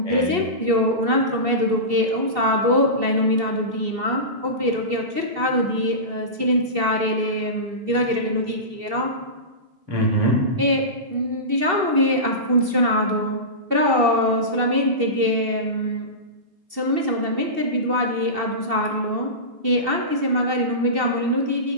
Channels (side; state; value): left; late; 2.7 ms